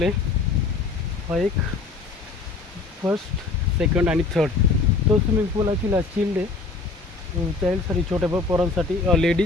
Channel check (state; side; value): quieter; right; 4.0 dB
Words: आहे, हा एक फर्स्ट सेकंड आणि थर्ड तो स्विमिंग पूल ॲक्च्युली चिल्ड आहे चाइल्डसाठी, छोट्या पोरांसाठी